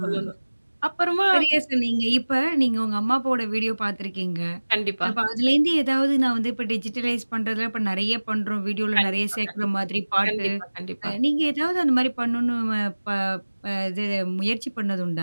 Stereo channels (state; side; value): inverted; both; correlation -1.00